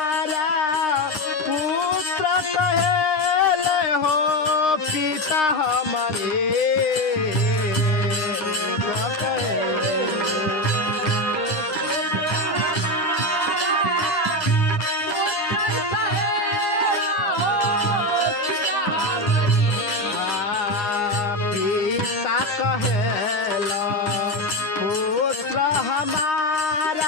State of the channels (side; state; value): right; late; 9.7 ms